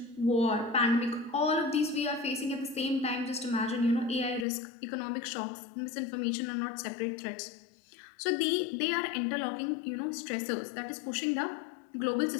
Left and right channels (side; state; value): right; drops out; at 4.5 s